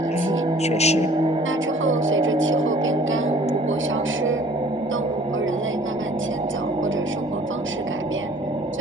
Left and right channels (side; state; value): both; normal; correlation 0.52